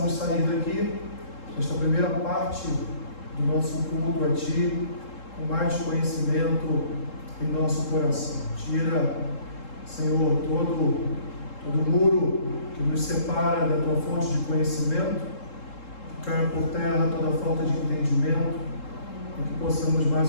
sair daqui, nesta primeira parte do nosso culto a Ti, com mais conhecimento em nosso coração. Tira, Senhor, todo muro que nos separa da Tua fonte de conhecimento, que caia por terra toda falta de entendimento, e que possamos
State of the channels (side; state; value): right; late; 3.7 ms